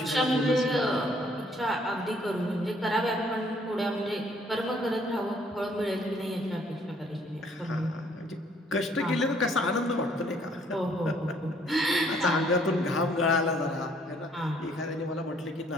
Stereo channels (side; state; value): both; normal; correlation 0.63